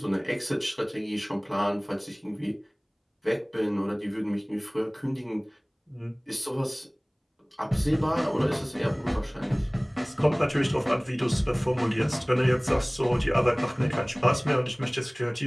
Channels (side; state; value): both; identical; correlation 1.00